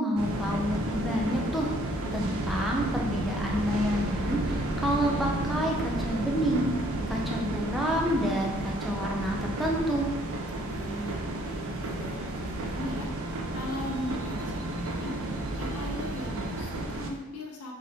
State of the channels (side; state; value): both; normal; correlation 0.63